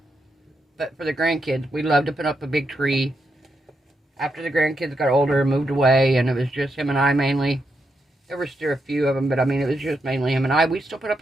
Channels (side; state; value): both; normal; correlation 0.83